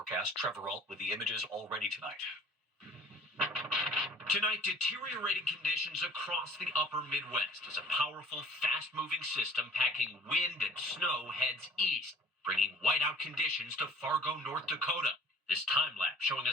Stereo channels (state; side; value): normal; both; correlation 0.49